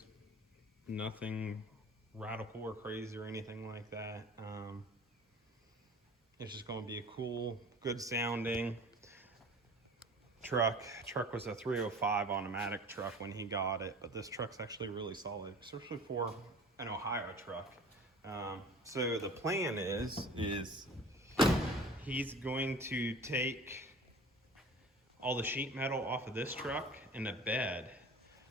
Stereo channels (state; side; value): normal; both; correlation 0.42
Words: Nothing radical or crazy or anything like that. It's just going to be a cool, good sounding truck. Truck was a 305 automatic truck when he got it, but this truck's actually really solid, especially for an Ohio truck. So the plan is he's going to take all the sheet metal off of this truck and the bed,